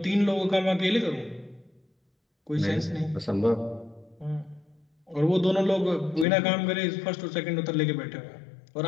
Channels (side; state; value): right; drops out; at 6.2 s